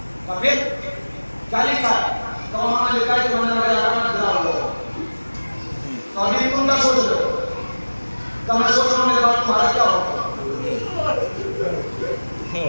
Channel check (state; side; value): inverted; both; correlation -1.00